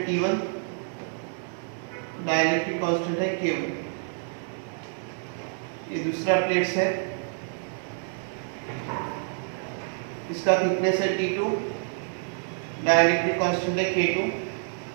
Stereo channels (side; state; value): left; silent; 60 dB below the other